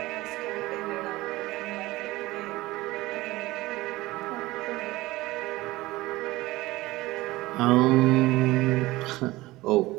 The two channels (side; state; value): left; quieter; 19.2 dB